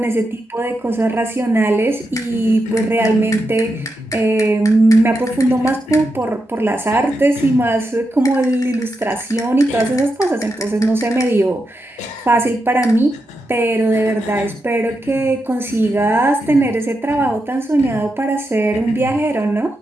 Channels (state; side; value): normal; both; correlation 0.86